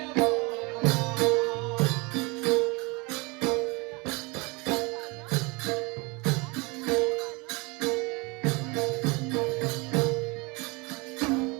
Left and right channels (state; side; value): quieter; left; 27.1 dB